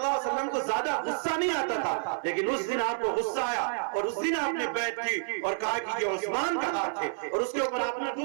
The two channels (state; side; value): silent; left; 58 dB below the other